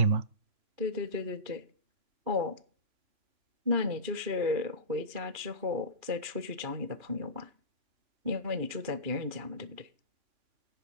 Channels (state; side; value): late; left; 2.4 ms